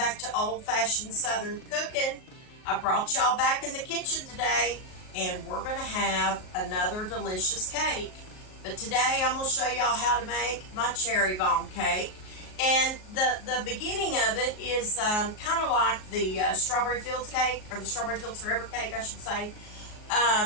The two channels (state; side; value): late; right; 38 ms